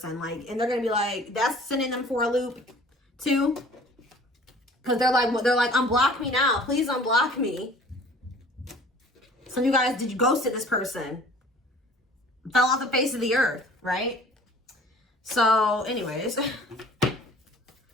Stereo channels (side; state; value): both; normal; correlation 0.49